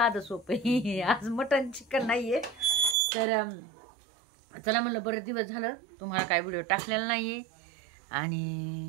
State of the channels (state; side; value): drops out; left; at 3.0 s